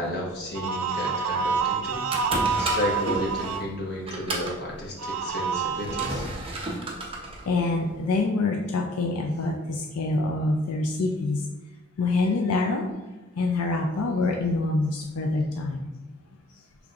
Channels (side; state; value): both; normal; correlation 0.48